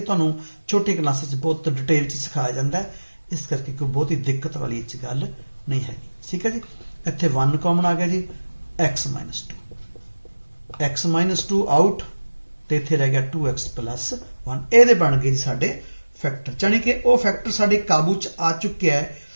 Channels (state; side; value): inverted; both; correlation -1.00